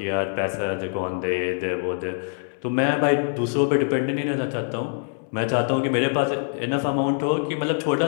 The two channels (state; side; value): silent; right; digital silence